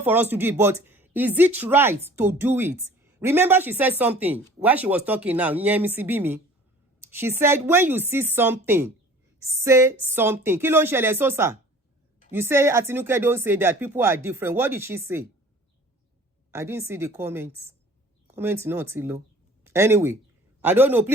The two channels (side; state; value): both; normal; correlation 0.48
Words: for us to do it, but is it right to do it? Remember she said something while she was talking now. She said, when you see something, say something. Kí ló ń ṣẹlẹ̀ Sosa? You say Atinuke don't say that people are different. What did she say? I didn't see the comments. Comments not too low. Anyway, I don't know.